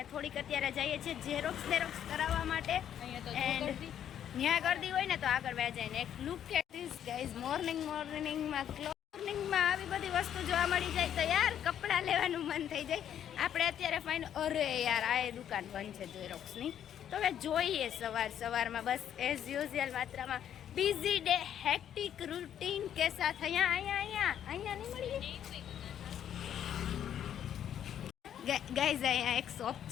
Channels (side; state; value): right; quieter; 9.9 dB